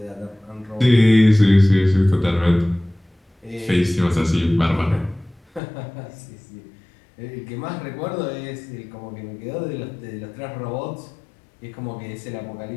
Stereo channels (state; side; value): drops out; right; at 5.6 s